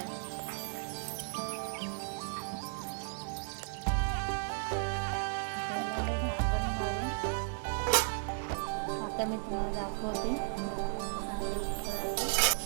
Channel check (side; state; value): left; silent; digital silence